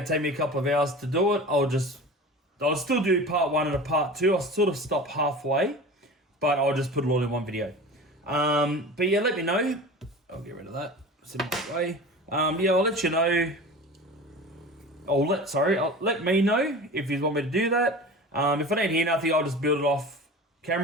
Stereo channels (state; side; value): normal; both; correlation 0.35